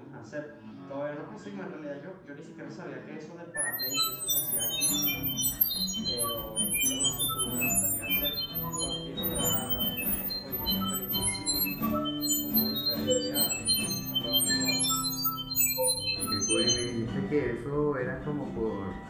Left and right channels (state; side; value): identical; both; correlation 1.00